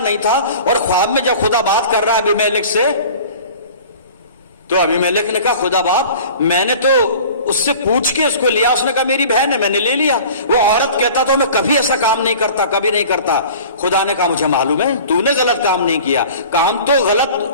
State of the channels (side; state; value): both; inverted; correlation -0.43